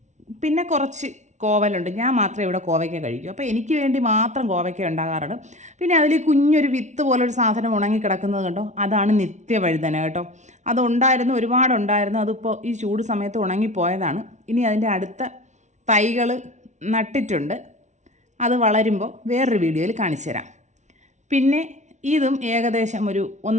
പിന്നെ കുറച്ച് കോവലുണ്ട്. ഞാൻ മാത്രമേ ഇവിടെ കോവയ്ക്ക കഴിക്കൂ, അപ്പോൾ എനിക്ക് വേണ്ടി മാത്രം കോവയ്ക്ക ഉണ്ടാകാറുണ്ട്. പിന്നെ അതിൽ കുഞ്ഞൊരു വിത്ത് പോലൊരു സാധനം ഉണങ്ങി കിടക്കുന്നത് കണ്ടോ, അതാണ് നിത്യവഴുതന കേട്ടോ. അതുണ്ടായിരുന്നു, ഒരുപാടുണ്ടായിരുന്നു, അതിപ്പോൾ ഈ ചൂട് സമയത്ത് ഉണങ്ങിപ്പോയതാണ്. ഇനി അതിൻ്റെ അടുത്ത തൈകൾ നട്ടിട്ടുണ്ട്, അത് വളരുമ്പോൾ വേറൊരു വീഡിയോയിൽ കാണിച്ചു തരാം. പിന്നെ ഇതും ഏകദേശം ഒരു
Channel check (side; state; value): left; late; 0.34 ms